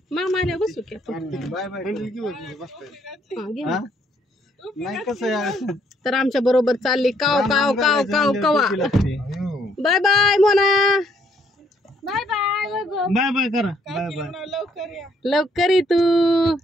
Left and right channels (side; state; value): both; normal; correlation 0.68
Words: मामा आल्या बसू की आपण बाय बाय. हा, घे ना. नाही कसं यार. तर आमच्या बरोबर चालली काव काव काव काव कवा bye bye Mona bye bye bye bye करा. Bye bye. लवकर ये तू